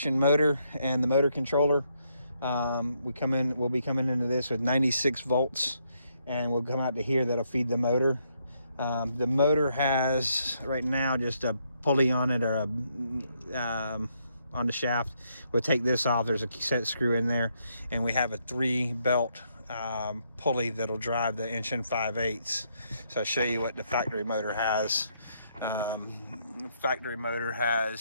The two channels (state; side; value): inverted; both; correlation -0.75